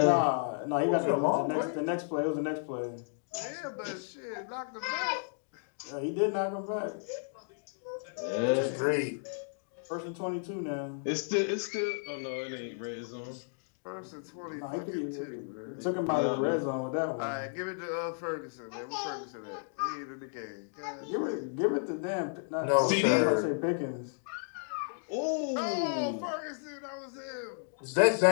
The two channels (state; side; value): silent; right; digital silence